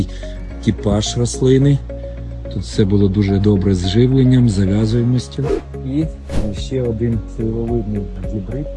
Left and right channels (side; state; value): both; identical; correlation 1.00